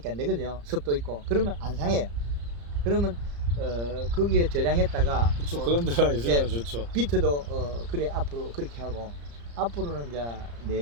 안 되거든요. 습도 있고 그러면 안 상해요. 그러면 거기에 저장했다가 그렇죠. 그런 데가 있으면 좋죠. 비트도 그래 앞으로 그렇게 하고 앞으로는 이제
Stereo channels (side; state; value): left; late; 34 ms